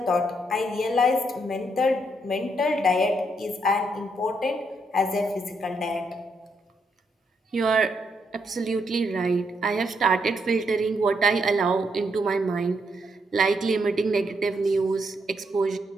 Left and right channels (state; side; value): normal; both; correlation 0.77